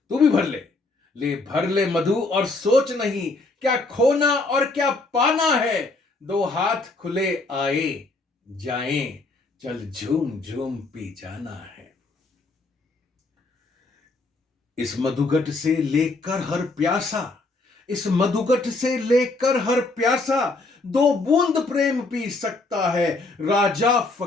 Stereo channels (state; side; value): quieter; right; 3.3 dB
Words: तू भी भर ले, ले भर ले मधु और सोच नहीं क्या खोना और क्या पाना है। दो हाथ खुले आए जाएं, चल झूम झूम पी जाना है। इस मधुघट से लेकर हर प्यासा, इस मधुघट से लेकर हर प्यासा, दो बूंद प्रेम पी सकता है। राजा